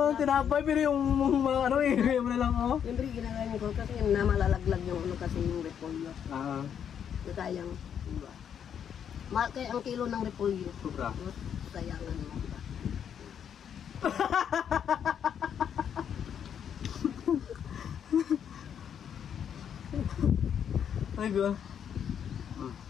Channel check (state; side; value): quieter; right; 8.4 dB